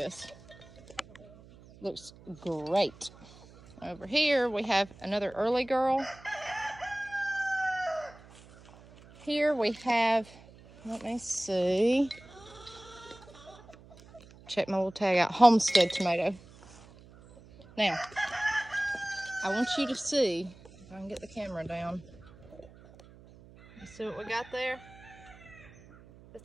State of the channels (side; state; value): right; noise; hum, 22 dB below the sound